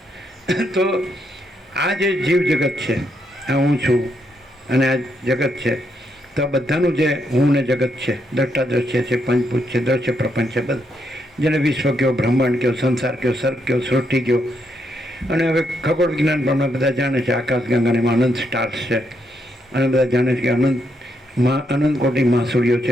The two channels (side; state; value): both; normal; correlation 0.78